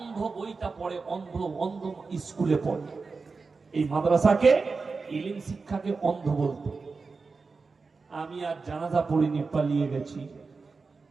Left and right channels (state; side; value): quieter; left; 4.4 dB